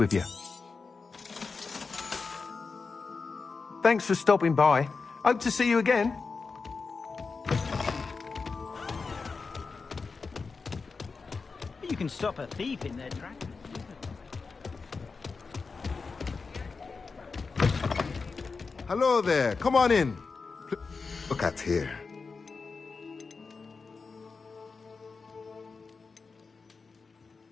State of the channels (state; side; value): quieter; right; 4.6 dB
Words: you. Thanks for stopping by. Hope to see you again. You can stop a thief in their tracks. Hello there. Come on in. Look at here.